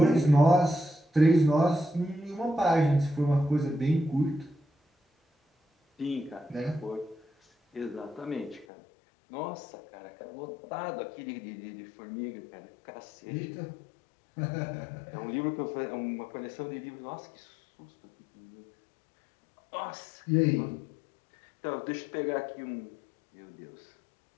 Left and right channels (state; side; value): drops out; right; at 8.7 s